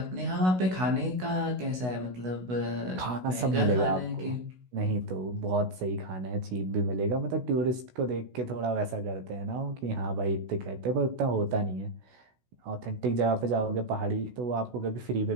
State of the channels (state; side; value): late; left; 16 ms